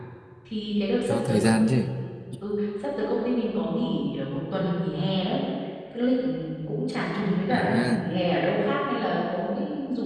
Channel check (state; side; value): identical; both; correlation 1.00